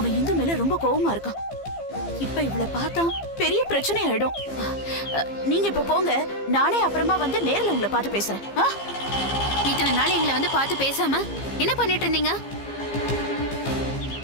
இந்து மேல ரொம்ப கோவமா இருக்கான். இப்ப இவளை பார்த்தா பெரிய பிரச்சனை ஆயிடும். நீங்க இப்ப போங்க, நானே அப்புறமா வந்து நேர்ல உங்களை பார்த்து பேசுறேன். இத்தனை நாள் எங்களை வந்து பார்த்து பேசாம என்ன பண்ணிட்டு இருந்தீங்க?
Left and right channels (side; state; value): right; late; 15 ms